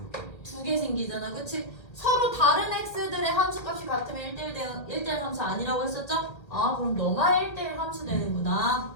2개 생기잖아. 그치? 서로 다른 x들의 함수값이 같으면 1대1 함수 아니라고 했었죠? 그럼 너만 1대1 함수 되는구나.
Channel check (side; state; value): right; late; 1.8 ms